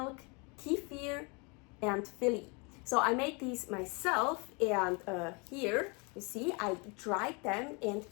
kefir, and viili. So I made these myself, and here you see I dried them and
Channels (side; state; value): right; quieter; 30.9 dB